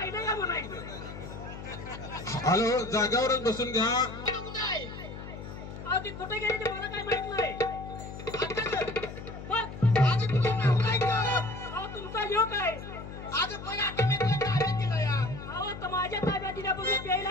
का म्हणायचं? हॅलो, जागावरच बसून घ्या. तू कुठं आहे अहो ती कुठे गेली ते मला काय माहित नाही. आता गं. मग आज तुझं नाव नाही का अहो तुमचा ह्यो काय? आज पण आता मी तुला ताब्यात दिलं या अहो तर माझ्या ताब्यात दिल्यापासून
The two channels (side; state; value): left; noise; hum, 11 dB below the sound